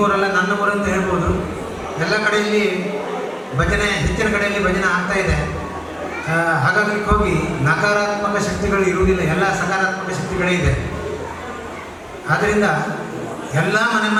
ಊರಲ್ಲ ನನ್ನ ಊರಂತ ಹೇಳ್ಬೋದು, ಎಲ್ಲ ಕಡೆಯಲ್ಲಿ ಭಜನೆ ಹೆಚ್ಚಿನ ಕಡೆಯಲ್ಲಿ ಭಜನೆ ಆಗ್ತಾ ಇದೆ. ಹಾಗಾಗಿ ಹೋಗಿ ನಕಾರಾತ್ಮಕ ಶಕ್ತಿಗಳು ಇರುವುದಿಲ್ಲ, ಎಲ್ಲ ಸಕಾರಾತ್ಮಕ ಶಕ್ತಿಗಳೇ ಇದೆ. ಆದ್ದರಿಂದ ಎಲ್ಲ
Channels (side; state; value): both; identical; correlation 1.00